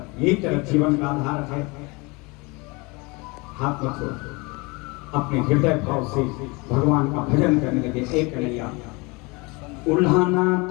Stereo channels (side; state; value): right; quieter; 26.9 dB